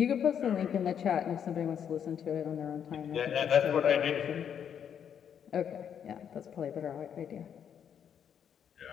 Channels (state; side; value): quieter; right; 8.4 dB